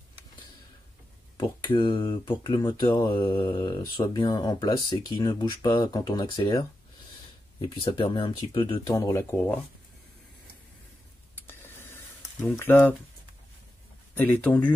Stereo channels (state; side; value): normal; both; correlation 0.89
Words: pour que le moteur soit bien en place et qu'il ne bouge pas quand on accélère. Et puis ça permet un petit peu de tendre la courroie. Donc là, elle est